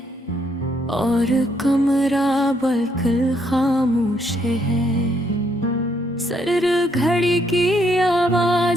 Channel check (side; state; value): both; normal; correlation 0.72